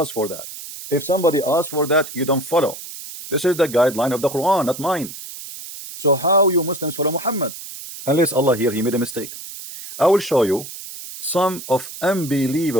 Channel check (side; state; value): right; noise; hiss, 12 dB below the sound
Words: for that. If somebody asks for that, you don't follow. This is the guideline of the Quran, not mine. So how you Muslims follow Muhammad? Unless Allah here he made a mistake. I will show you some of